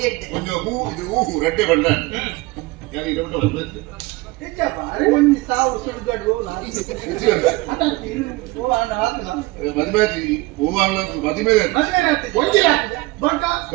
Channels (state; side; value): quieter; left; 21.6 dB